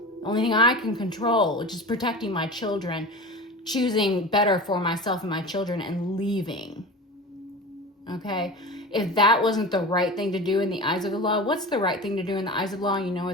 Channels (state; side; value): normal; both; correlation 0.31